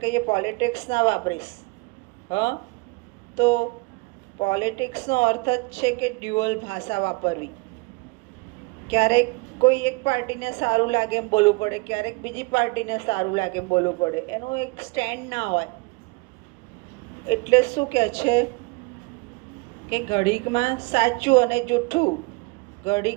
કહીએ પોલિટિક્સ ના વાપરીશ. તો પોલિટિક્સનો અર્થ જ છે કે ડ્યુઅલ ભાષા વાપરવી. ક્યારેક કોઈ એક પાર્ટીને સારું લાગે એમ બોલવું પડે, ક્યારેક બીજી પાર્ટીને સારું લાગે એમ બોલવું પડે. એનું એક સ્ટેન્ડ ના હોય. એટલે શું કહે છે કે ઘડીકમાં સાચું અને જૂઠું,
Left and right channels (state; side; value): quieter; left; 27.1 dB